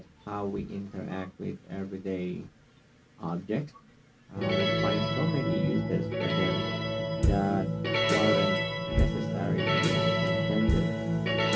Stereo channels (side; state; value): both; identical; correlation 1.00